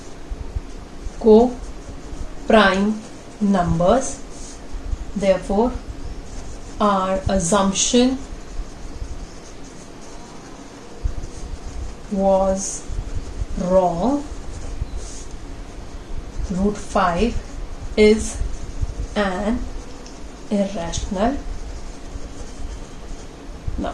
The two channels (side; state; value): both; identical; correlation 1.00